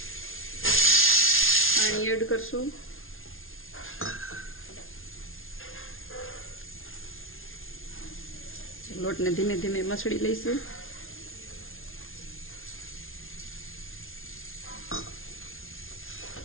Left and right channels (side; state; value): right; late; 0.60 ms